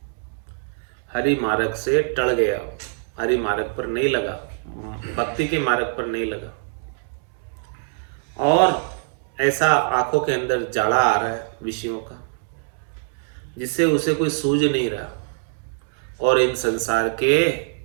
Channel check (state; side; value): silent; left; digital silence